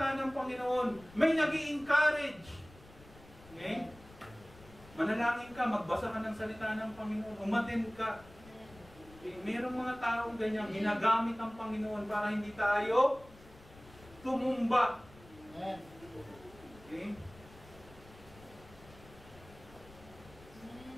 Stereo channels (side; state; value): left; noise; rumble, 22 dB below the sound